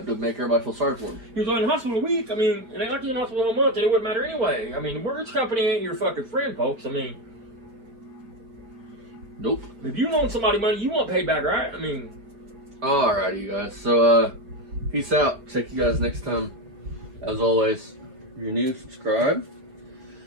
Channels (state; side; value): late; left; 4.7 ms